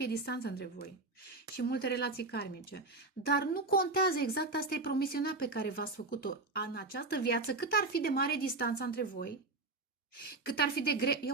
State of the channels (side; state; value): left; quieter; 3.3 dB